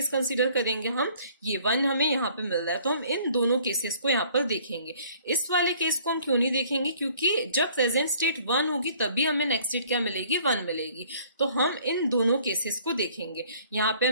कंसीडर करेंगे, हम ये 1 हमें यहाँ पे मिल रहा है, तो हम इन दोनों केसेस को यहाँ पर देखेंगे। इस वाले केस को हम क्यों नहीं देखेंगे, क्योंकि जब प्रेजेंट स्टेट 1 होगी तभी हमें नेक्स्ट स्टेट क्या मिलेगी, 1 मिलेगी। तो हम इन दोनों केसेस को देखेंगे। यहाँ पे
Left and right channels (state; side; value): inverted; both; correlation -0.57